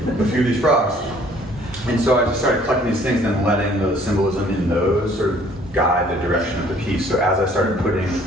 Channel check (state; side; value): normal; both; correlation 0.58